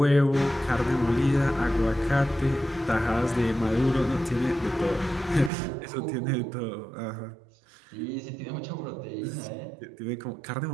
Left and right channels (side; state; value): left; drops out; at 5.5 s